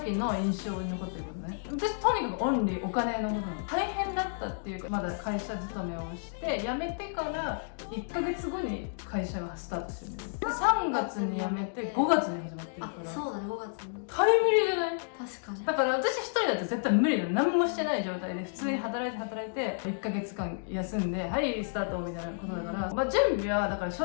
の印象に残ってることね。私とにかくオンリーお金のことなの。大変だったっていうか、まだ会社勤めをして辞めてから1ヶ月後に会社がスタートしてるんですよ。3月に辞めて5月に始まってるから。あ、そうだね、5月にタイムリーじゃない？確かに。だから私一人だと絶対無理だよ。何もしてない状態で普通に働いて1ヶ月間休んではいスタートみたいなことだから、まあ準備はだから正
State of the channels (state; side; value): silent; right; digital silence